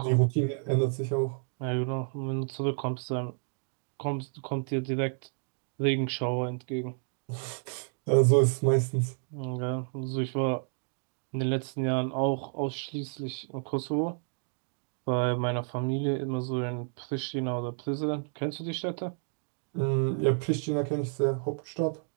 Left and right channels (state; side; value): silent; left; digital silence